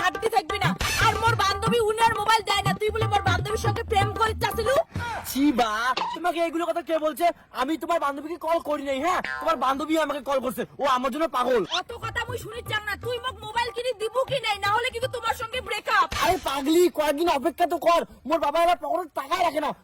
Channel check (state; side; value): identical; both; correlation 1.00